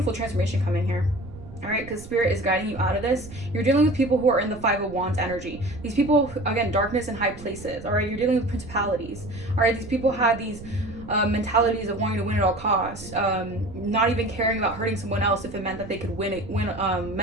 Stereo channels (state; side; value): noise; right; rumble, 15 dB below the sound